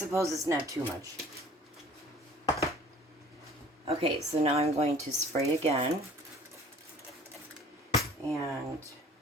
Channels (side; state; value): both; normal; correlation 0.50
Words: it's not too much. Okay, so now I'm going to spray again. And